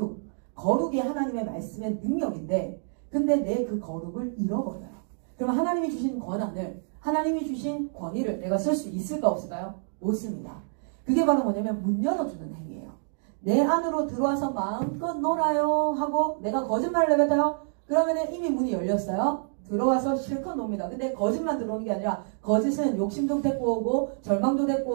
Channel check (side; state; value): left; silent; digital silence